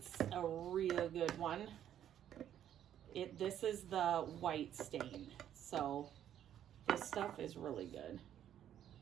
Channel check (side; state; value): left; quieter; 10.5 dB